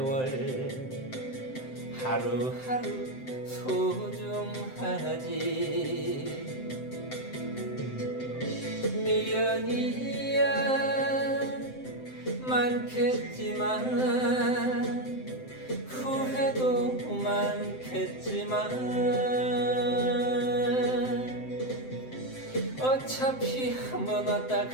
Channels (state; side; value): late; right; 7.7 ms